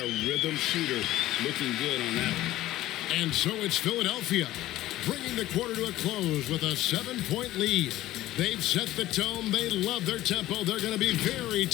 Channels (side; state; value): right; quieter; 15.4 dB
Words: rhythm shooter. Looking good on that one. And so it's Philadelphia, bringing the quarter to a close with a 7-point lead. They've set the tone. They love their tempo. They're going to be very